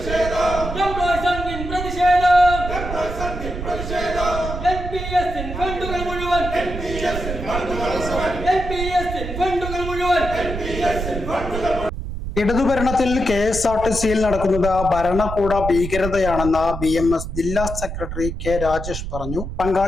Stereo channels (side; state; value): right; noise; rumble, 6 dB below the sound